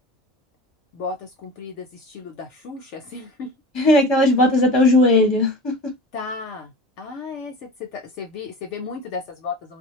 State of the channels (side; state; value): both; normal; correlation 0.35